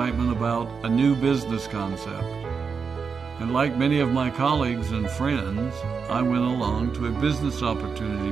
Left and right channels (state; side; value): quieter; left; 5.6 dB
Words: about a new business concept. And like many of my colleagues and friends, I went along to a business opportunity